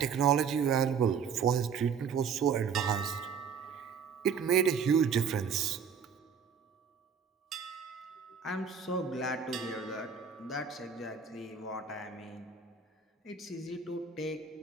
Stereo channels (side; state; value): left; quieter; 6.5 dB